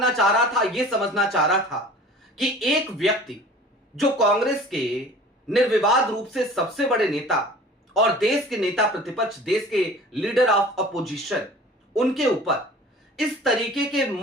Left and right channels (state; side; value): normal; both; correlation 0.44